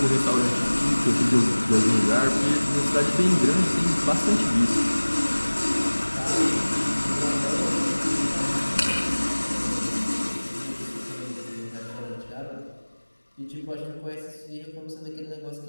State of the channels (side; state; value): both; inverted; correlation -1.00